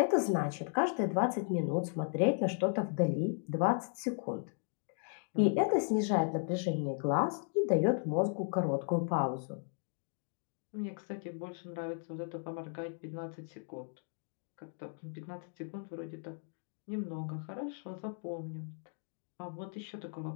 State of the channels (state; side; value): silent; right; 54 dB below the other